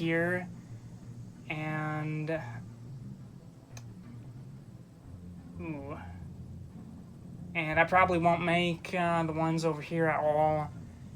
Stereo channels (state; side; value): identical; both; correlation 1.00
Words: and and I probably won't make the ones over here at all,